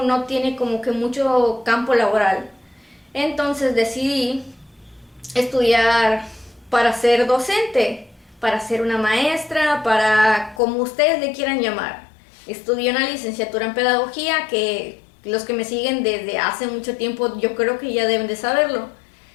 tiene como que mucho campo laboral. Entonces decidí estudiar para ser docente, para ser una maestra, para como ustedes le quieran llamar. Estudié una licenciatura en pedagogía que los que me siguen desde hace mucho tiempo yo creo que ya deben de saberlo.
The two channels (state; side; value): drops out; right; at 10.6 s